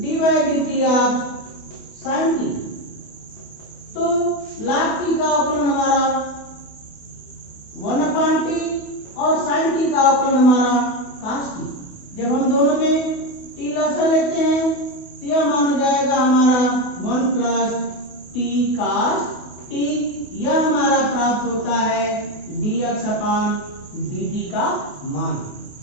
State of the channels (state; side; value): late; right; 28 ms